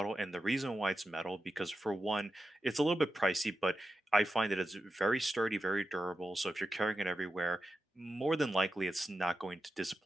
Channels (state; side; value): normal; both; correlation 0.91